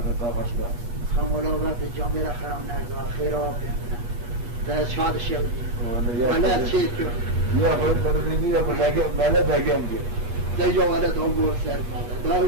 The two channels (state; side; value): late; left; 8.4 ms